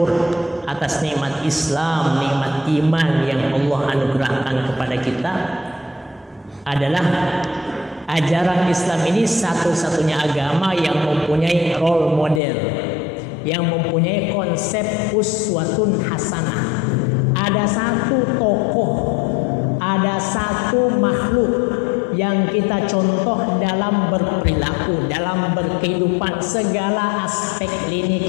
atas nikmat Islam, nikmat iman yang Allah anugerahkan kepada kita, adalah ajaran Islam ini satu-satunya agama yang mempunyai role model, yang mempunyai konsep uswatun hasanah. Ada satu tokoh, ada satu makhluk yang kita contoh dalam berperilaku, dalam berkehidupan, segala aspek lini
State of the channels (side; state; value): right; drops out; at 12.4 s